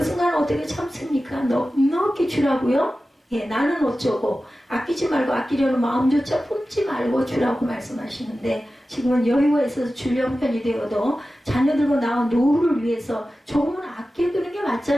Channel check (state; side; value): normal; both; correlation 0.94